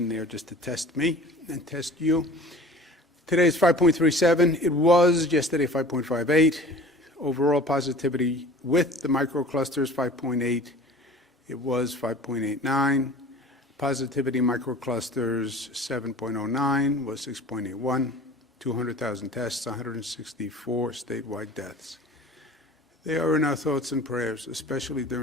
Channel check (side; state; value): both; normal; correlation 0.43